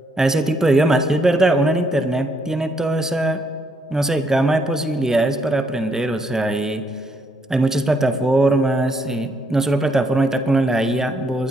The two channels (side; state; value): both; normal; correlation 0.73